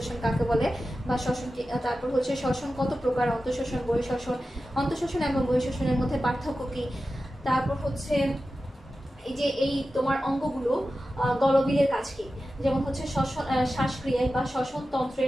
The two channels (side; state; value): both; normal; correlation 0.93